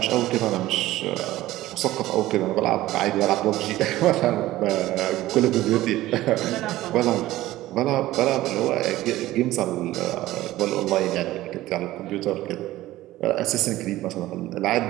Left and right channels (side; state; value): left; quieter; 16.1 dB